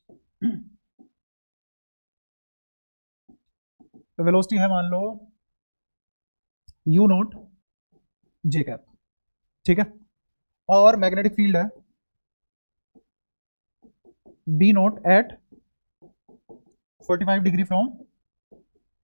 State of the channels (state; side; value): inverted; both; correlation -1.00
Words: वेलोसिटी है मान लो u नॉट j कैप, ठीक है, और मैग्नेटिक फील्ड है b not at 45 degree from